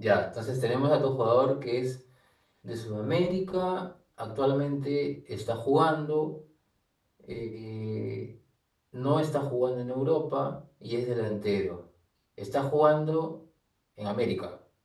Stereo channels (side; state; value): both; identical; correlation 1.00